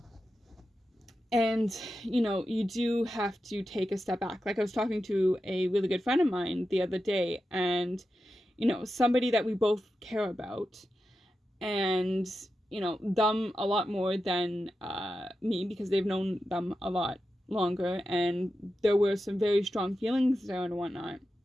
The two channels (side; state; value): both; normal; correlation 0.90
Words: And, you do have to take a step back. Like, I was talking to a really good friend of mine the other day, and, somebody that we both care about, and, them a lot more than me, because they've known them a lot longer, and there were some very strong feelings there and whatnot.